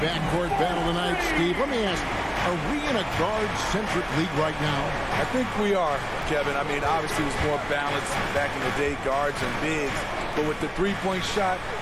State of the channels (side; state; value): both; identical; correlation 1.00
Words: battle tonight, Steve. Let me ask, are we in a guard-centric league right now? I think we are, Kevin. I mean, obviously it was more balanced back in the day, guards and bigs. But with the three-point shot,